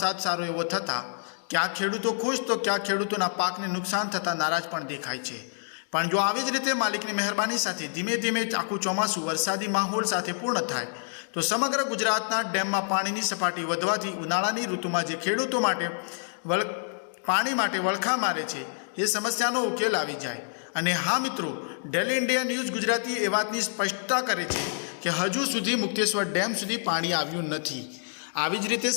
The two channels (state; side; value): silent; right; digital silence